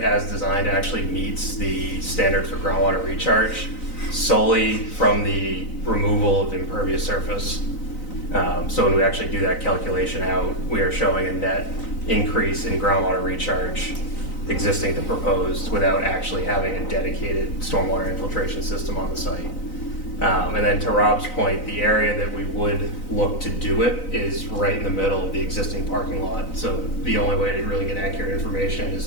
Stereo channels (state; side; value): late; right; 3.9 ms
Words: as designed actually meets the standard for groundwater recharge solely from the removal of impervious surface. So when we actually do that calculation out, we are showing a net increase in groundwater recharge existing to proposed without actually having a dedicated stormwater infiltration system on the site. And then to Rob's point, the area that we would look to do it is right in the middle of the existing parking lot. So the only way to really get accurate information is